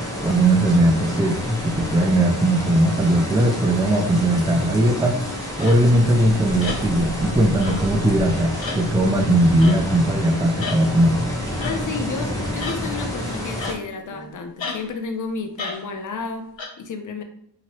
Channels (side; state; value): both; normal; correlation 0.68